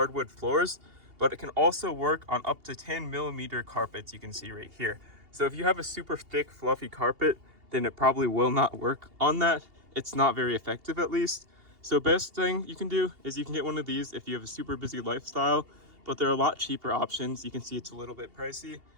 floors, but it can also work on up to 10mm carpets, you can see right here. So if you have a super thick, fluffy carpet, then it probably will not work on that. It's not very effective at least. So best thing you can do is you can get one of these if you have a super busy lifestyle, but there are a lot cheaper options. You can see it's a little bit pricey,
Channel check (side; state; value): left; late; 2.8 ms